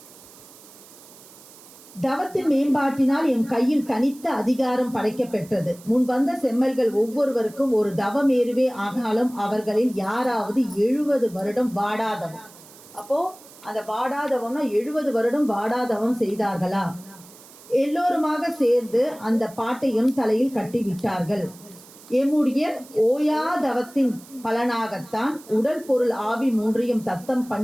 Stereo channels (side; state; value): right; noise; hiss, 22 dB below the sound